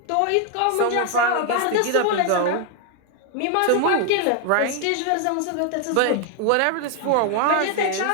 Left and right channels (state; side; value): different; both; correlation 0.00